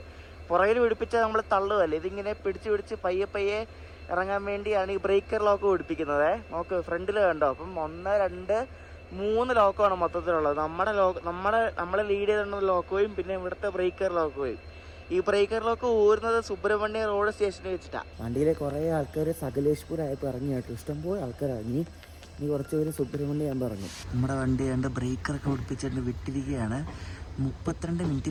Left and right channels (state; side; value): identical; both; correlation 1.00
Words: പുറകിൽ പിടിപ്പിച്ചാൽ നമ്മൾ തള്ളുകയല്ലേ, ഇതിങ്ങനെ പിടിച്ച് പയ്യെ ഇറങ്ങാൻ വേണ്ടിയാണ് ഈ ബ്രേക്കർ ലോക്ക് പിടിപ്പിക്കുന്നത്. നോക്ക് ഫ്രണ്ടിൽ കണ്ടോ. അപ്പം 1, 2, 3 ലോക്കാണ് മൊത്തത്തിലുള്ളത്. നമ്മളെ ലീഡ് ചെയ്തിരുന്ന ലോക്കുകയും പിന്നെ ഇവിടുത്തെ ബ്രേക്കർ ലോക്കുകയും. ഈ ബ്രേക്കർ ലോക്ക് ഊരുന്നത് സുബ്രഹ്മണ്യ റോഡ് സ്റ്റേഷനിൽ വെച്ചിട്ടാണ്. വണ്ടിയിലെ കുറേ ആൾക്കാർ സകലേഷ്പൂർ ആയപ്പോൾ ഇറങ്ങി കേട്ടോ. ഇഷ്ടംപോലെ ആൾക്കാർ ഇറങ്ങി. ഇനി കുറച്ച് പേര് സുബ്രഹ്മണ്യം ഞാൻ പറഞ്ഞു. നമ്മുടെ വണ്ടി കണ്ട് ബ്രേക്കറൊക്കെ പിടിപ്പിച്ചിട്ട് വിട്ടിരിക്കുകയാണ്. 32 മിനിറ്റ്